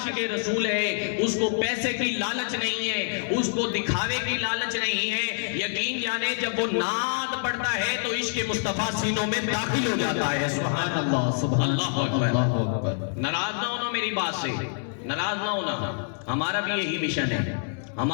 رسول ہے، اس کو پیسے کی لالچ نہیں ہے، اس کو دکھاوے کی لالچ نہیں ہے، یقین جانے جب وہ نعت پڑھتا ہے تو عشق مصطفیٰ سینوں میں داخل ہو جاتا ہے۔ سبحان اللہ، سبحان اللہ اکبر۔ ناراض نہ ہونا میری بات سے، ناراض نہ ہونا، ہمارا بھی یہی مشن ہے،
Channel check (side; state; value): right; silent; 61 dB below the other